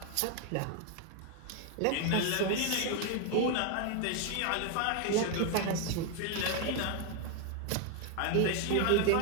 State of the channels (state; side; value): different; both; correlation 0.01